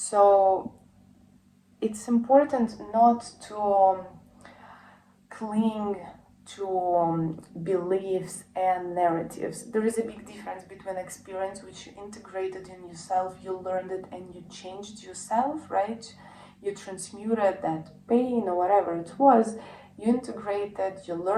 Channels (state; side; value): identical; both; correlation 1.00